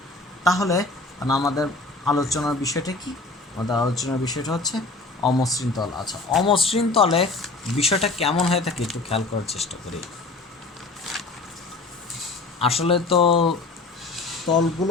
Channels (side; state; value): right; quieter; 3.4 dB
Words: তাহলে আমাদের আলোচনার বিষয়টা কি? আমাদের আলোচনার বিষয়টা হচ্ছে অমসৃণ তল। আচ্ছা, অমসৃণ তলে বিষয়টা কেমন হয়ে থাকে একটু খেয়াল করার চেষ্টা করি। আসলে তো